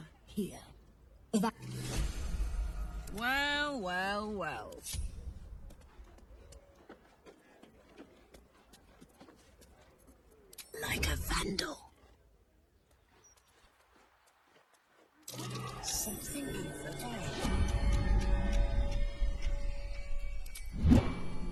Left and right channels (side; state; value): both; identical; correlation 1.00